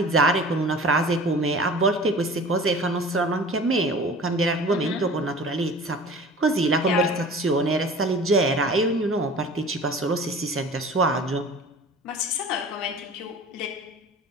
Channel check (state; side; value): normal; both; correlation 0.42